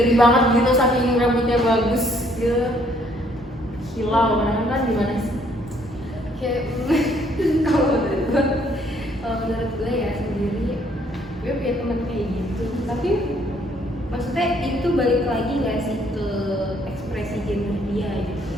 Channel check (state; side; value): normal; both; correlation 0.65